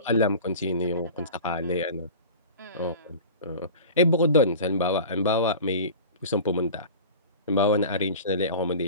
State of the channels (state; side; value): inverted; both; correlation -0.37